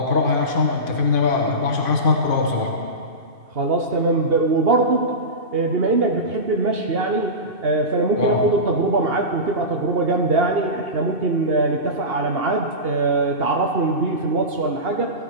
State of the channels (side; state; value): left; late; 2.5 ms